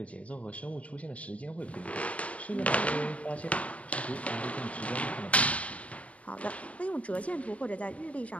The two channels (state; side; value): late; right; 0.066 ms